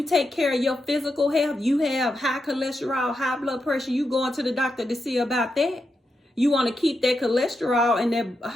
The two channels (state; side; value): normal; both; correlation 0.86